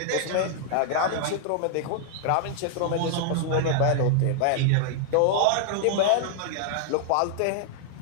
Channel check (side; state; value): both; different; correlation -0.01